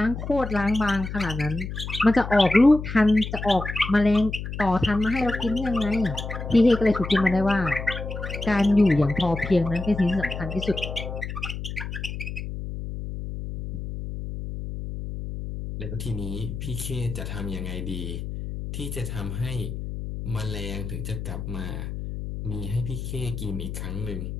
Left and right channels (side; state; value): left; noise; hum, 7 dB below the sound